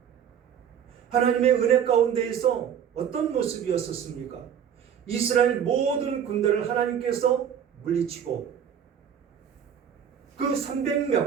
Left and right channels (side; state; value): left; quieter; 8.6 dB